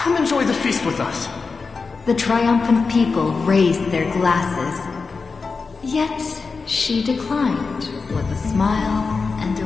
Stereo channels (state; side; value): quieter; right; 4.5 dB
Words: enjoy the feast with us. The triumphant people raised their glasses, yet she declined with a smile and a